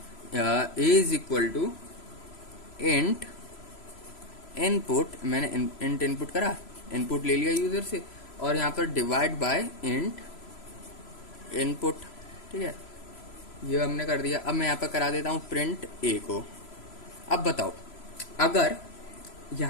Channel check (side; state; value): right; late; 3.0 ms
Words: a is equal to int input. मैंने इंट इनपुट करा, इनपुट ले लिया यूजर से, और यहाँ पर डिवाइड बाय इंट इनपुट। ठीक है, ये हमने कर दिया। अब मैं यहाँ पर करा देता हूँ प्रिंट ए को। अब बताओ, अगर